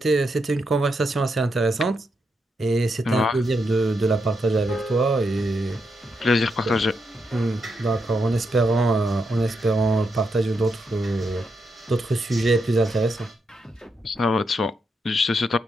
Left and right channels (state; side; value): normal; both; correlation 0.82